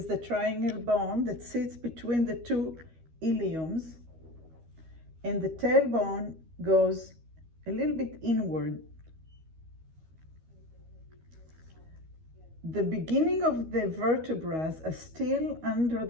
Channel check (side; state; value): left; late; 13 ms